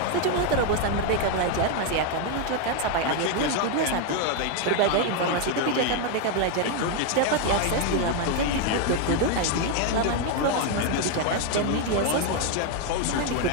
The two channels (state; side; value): different; both; correlation 0.01